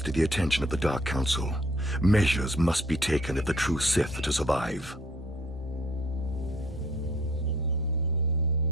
to the attention of the Dark Council. Measures must be taken if the true Sith are to survive.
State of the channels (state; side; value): normal; both; correlation 0.58